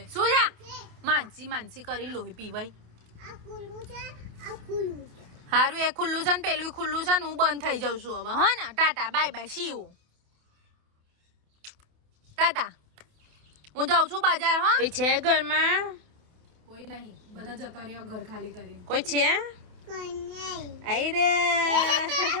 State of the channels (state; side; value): late; left; 28 ms